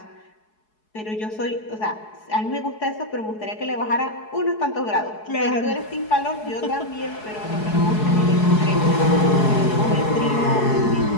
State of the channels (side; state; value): right; late; 4.7 ms